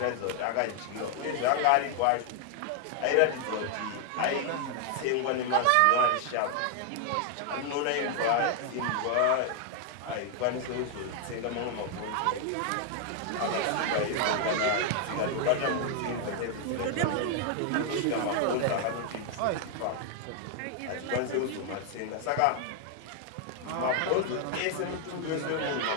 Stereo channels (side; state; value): both; different; correlation 0.00